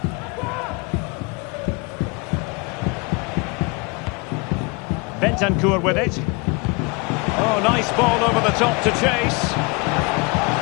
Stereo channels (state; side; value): quieter; right; 29.6 dB